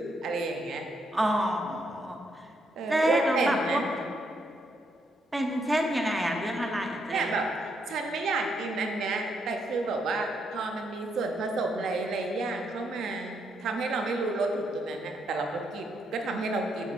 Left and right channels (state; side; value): normal; both; correlation 0.76